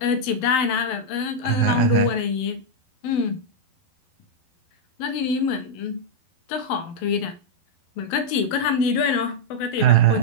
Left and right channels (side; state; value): right; late; 12 ms